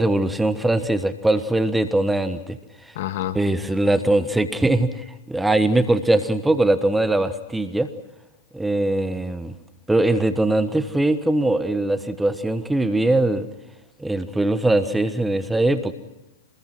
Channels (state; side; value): normal; both; correlation 0.88